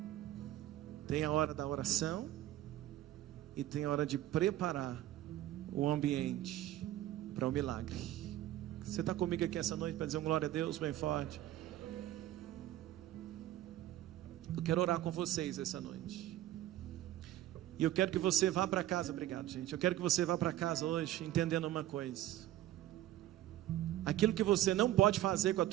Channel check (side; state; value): left; quieter; 13.9 dB